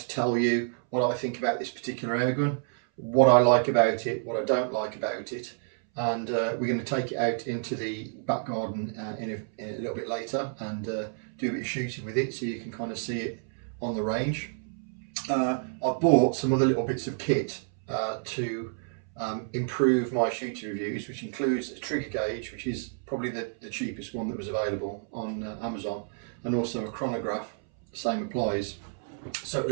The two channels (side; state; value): left; silent; 58 dB below the other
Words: tell you what I think about this particular airgun, what I like about it, what I don't like about it, and we're going to take it out into the back garden in a little bit later and do a bit of shooting with it so you can kind of see it on the range. I've bought some other little bits of kit to improve my shooting reviews, which includes a trigger gauge, which is probably the cheapest one that was available on Amazon, and also a chronograph. Same applies, so at